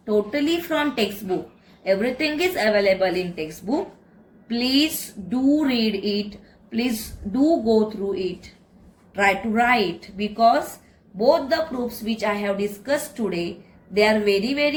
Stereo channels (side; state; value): both; identical; correlation 1.00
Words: totally from textbook, everything is available in textbook. Please do read it. Please do go through it. Try to write, because both the proofs which I have discussed today, they are very,